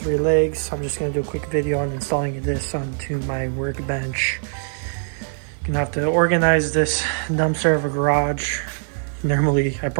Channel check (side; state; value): left; silent; 64 dB below the other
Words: legs. I'm just going to do a quick video on installing this onto my workbench. Gonna have to organize this dumpster of a garage. Normally I